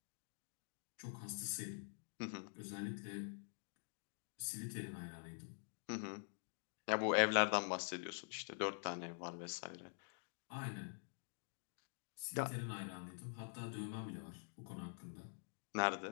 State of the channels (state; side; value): silent; right; digital silence